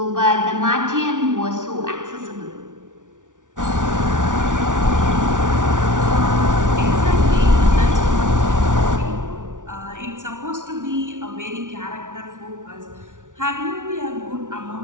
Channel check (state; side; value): late; left; 0.87 ms